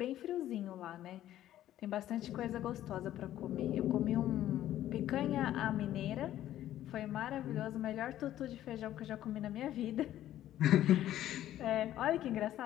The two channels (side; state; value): right; quieter; 12.8 dB